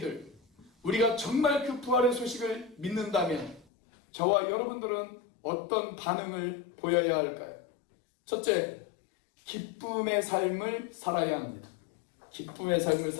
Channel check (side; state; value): right; drops out; at 3.7 s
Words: 우리가 정말 그 부활의 소식을 믿는다면 저와 여러분들은 어떤 반응을 보여야 할까요? 첫째, 기쁨의 삶을 살아야 합니다. 기쁨의 삶을